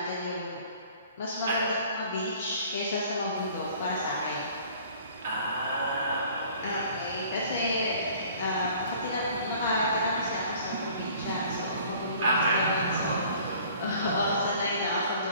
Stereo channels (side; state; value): both; inverted; correlation -0.52